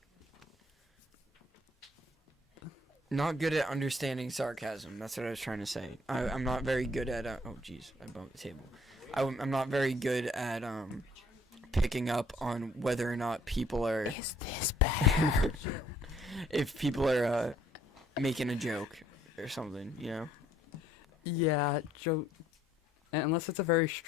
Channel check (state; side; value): normal; both; correlation 0.62